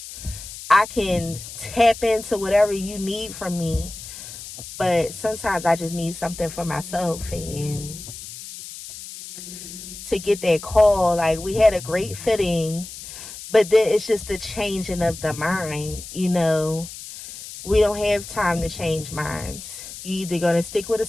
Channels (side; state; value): left; noise; hiss, 12 dB below the sound